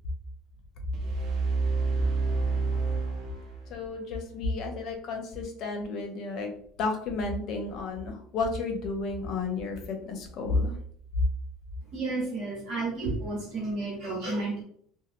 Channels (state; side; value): normal; both; correlation 0.61